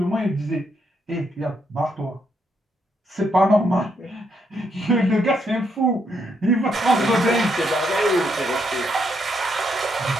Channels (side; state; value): both; normal; correlation 0.76